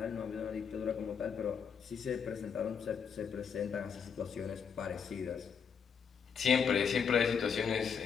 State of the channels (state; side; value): quieter; right; 6.7 dB